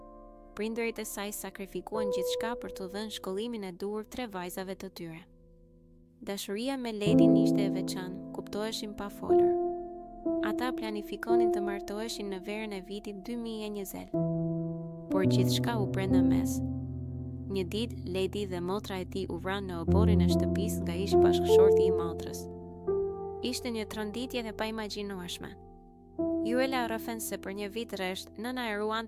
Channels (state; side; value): identical; both; correlation 1.00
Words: Prindërit e saj sakrifikuan gjithçka për t'u dhënë shkollimin e duhur 3 vajzave të tyre. Dashuria me Ledin ishte e veçantë, kuptoheshin pa folur. Ata planifikonin të martoheshin në verën e vitit 2020, por gjithçka u prenda mes. Një ditë, Ledi dhe motra e tij u vranë në oborrin e shtëpisë nga ish bashkëshorti i motrës. Ishte një tronditje e paimagjinueshme. Juela rrëfen se për një vit rresht, nëna e